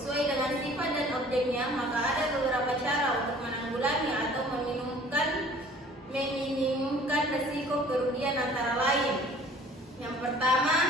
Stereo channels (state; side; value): normal; both; correlation 0.51